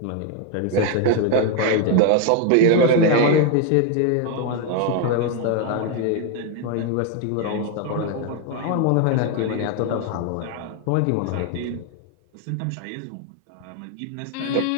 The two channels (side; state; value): both; different; correlation 0.01